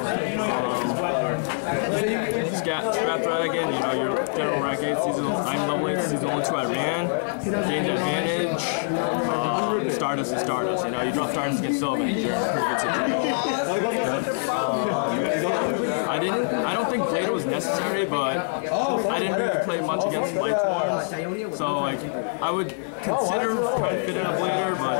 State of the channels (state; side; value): silent; right; 62 dB below the other